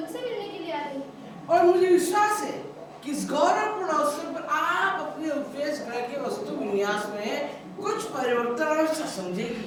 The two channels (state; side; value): identical; both; correlation 1.00